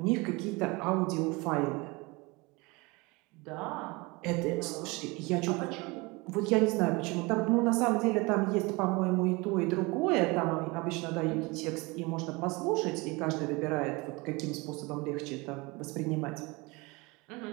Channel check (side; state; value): left; quieter; 25.4 dB